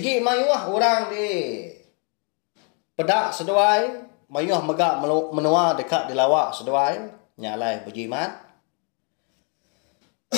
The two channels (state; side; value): quieter; right; 37.5 dB